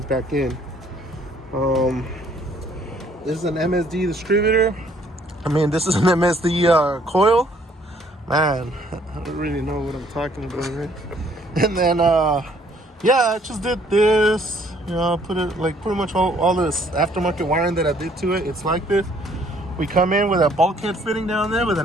back in. This is an MSD distributor. I mean, this is an MSD coil. Man, I don't really know what I'm talking about, right? And then, yeah, I just did this, you know, put it like pretty much all this aftermarket wiring that I did to it. It's like this. We come in with a bulkhead fitting down there with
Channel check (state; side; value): normal; both; correlation 0.62